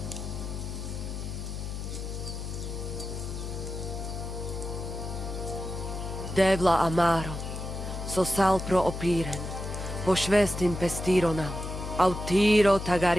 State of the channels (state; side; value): noise; left; hum, 6 dB below the sound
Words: Devla amaro, so sal pro opiren, pošvestin pestironam, autiro